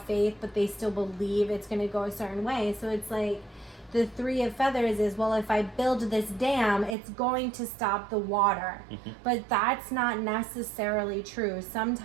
but they still believe it's going to go a certain way. So it's like the 3 of feathers is, well, if I build this dam, it's going to stop the water. But that's not necessarily true.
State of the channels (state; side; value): drops out; left; at 7.0 s